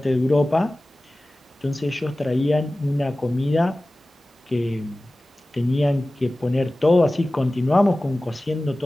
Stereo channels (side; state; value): both; normal; correlation 0.97